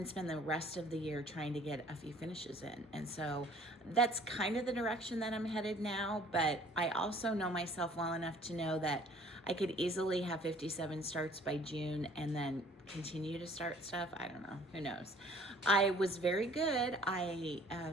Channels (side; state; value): both; normal; correlation 0.54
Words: spend the rest of the year trying to get a few finishes in. And so that's kind of the direction that I'm headed now. But I also know myself well enough to know that I could easily have 57 starts by June and then continue to start stuff. I don't know. Who knows? I was very good. I